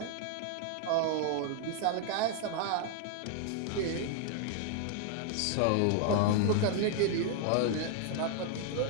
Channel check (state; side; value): different; both; correlation 0.00